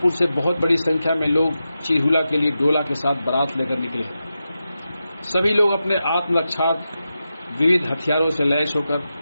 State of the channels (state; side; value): inverted; both; correlation -0.90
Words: से बहुत बड़ी संख्या में लोग चिरहुला के लिए डोला के साथ बारात लेकर निकले। सभी लोग अपने आत्मरक्षार्थ विविध हथियारों से लैस होकर